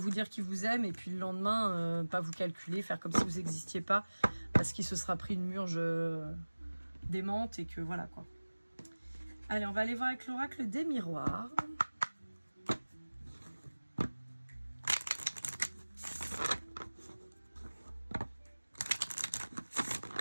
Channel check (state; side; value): inverted; both; correlation -1.00